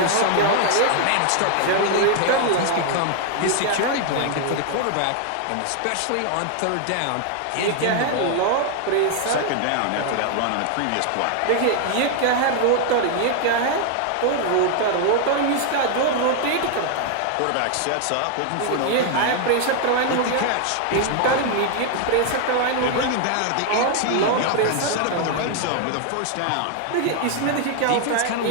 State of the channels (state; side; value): different; both; correlation 0.00